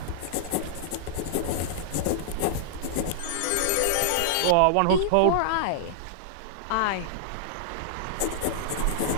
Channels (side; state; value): both; different; correlation -0.01